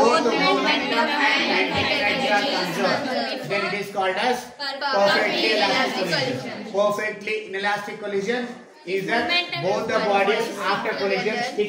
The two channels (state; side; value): identical; both; correlation 1.00